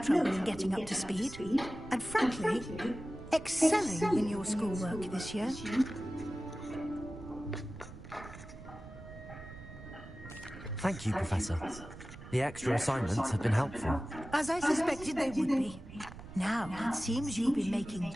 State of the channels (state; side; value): noise; right; rumble, 15 dB below the sound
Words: trouble in getting up to speed, and frankly, excelling in your schoolwork this year. Thank you, Professor. The extra assignments have been helpful. As I suspected they would be. Now, it seems you've been making